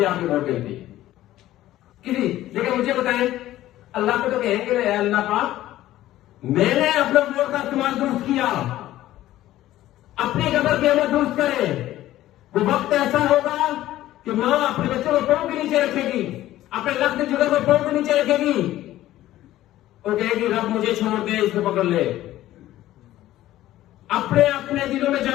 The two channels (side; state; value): right; quieter; 14.5 dB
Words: आपकी वोट गिनती किसी, लेकिन मुझे बताएं अल्लाह को तो कहेंगे ना, अल्लाह पाक मैंने अपने वोट का इस्तेमाल दुरुस्त किया, अपनी कदर कीमत दुरुस्त करे। वो वक्त ऐसा होगा कि मां अपने बच्चों को पांव के नीचे रखेगी, अपने लक्ष्य जुगर को पांव के नीचे रखेगी और कहेगी रब मुझे छोड़ दे, इसको पकड़ ले। अपने अपने दिलों में